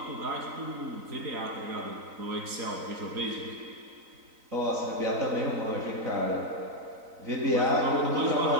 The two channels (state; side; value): late; left; 3.9 ms